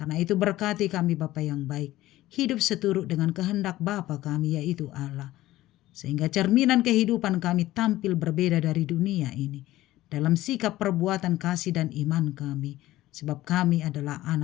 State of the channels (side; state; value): right; quieter; 16.0 dB